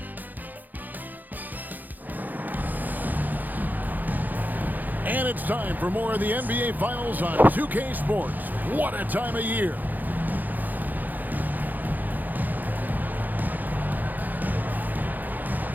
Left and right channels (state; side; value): late; left; 0.084 ms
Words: And it's time for more of the NBA Finals on 2K Sports. What a time of year.